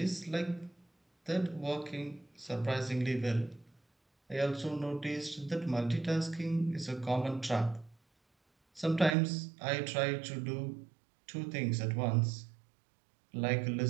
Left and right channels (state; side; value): drops out; left; at 9.2 s